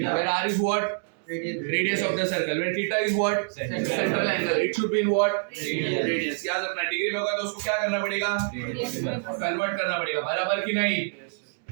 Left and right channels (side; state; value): left; silent; digital silence